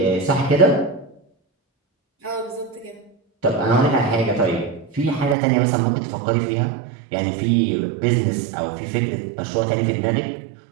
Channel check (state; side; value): drops out; left; at 5.4 s